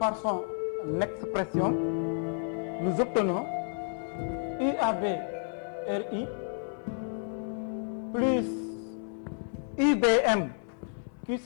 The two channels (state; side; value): silent; right; 57 dB below the other